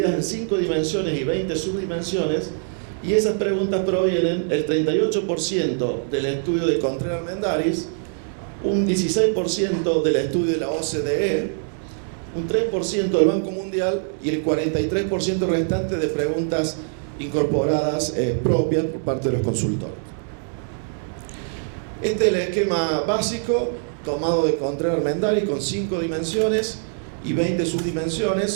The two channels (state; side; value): silent; left; 63 dB below the other